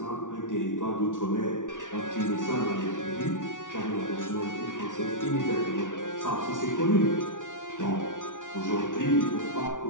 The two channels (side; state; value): right; late; 0.87 ms